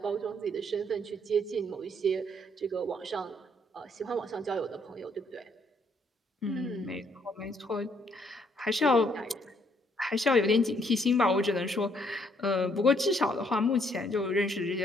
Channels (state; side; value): normal; both; correlation 0.68